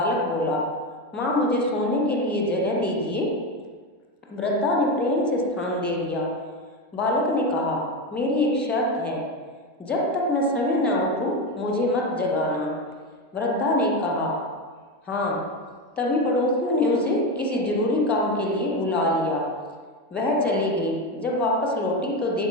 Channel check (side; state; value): both; normal; correlation 0.15